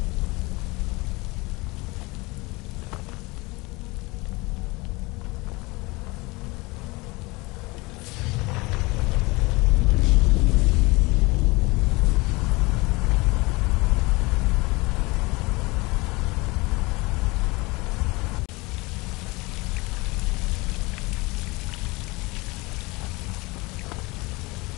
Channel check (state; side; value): quieter; right; 24.1 dB